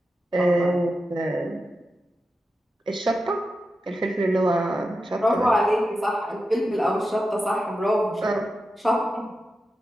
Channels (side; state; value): both; normal; correlation 0.90